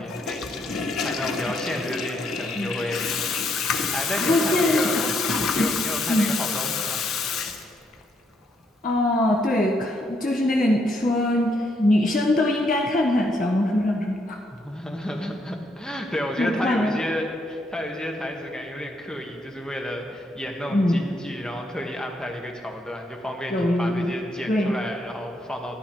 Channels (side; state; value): both; normal; correlation 0.75